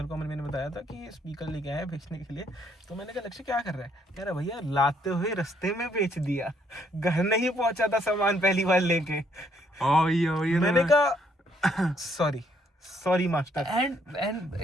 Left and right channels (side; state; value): both; normal; correlation 0.69